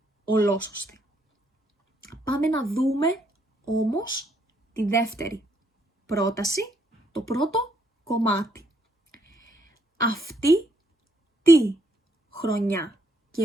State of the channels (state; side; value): normal; both; correlation 0.72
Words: ολόσωστη. Πάμε να δούμε όμως τη δεύτερη πρόταση, το πρώτο κομμάτι. Αυτή τη χρονιά